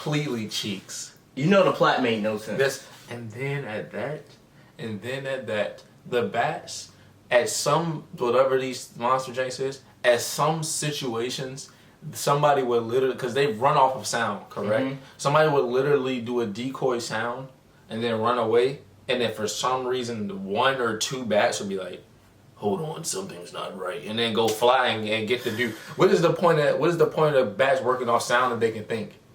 cheeks. You know the plot made no sense. And then at that, the bats. At some, whatever these monster janks is, at some situations, somebody would literally, because they run off of sound, correct? Mm-hmm. Somebody would literally do a decoy sound and then run away, and then for some reason, one or two bats would be like, hold on, something's not right, and then go flying and get the dude. What is the point of bats working off sound that they can think?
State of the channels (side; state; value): both; identical; correlation 1.00